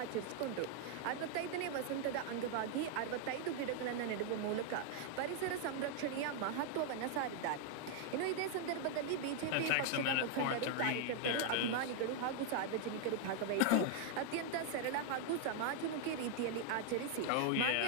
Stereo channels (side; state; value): both; different; correlation 0.00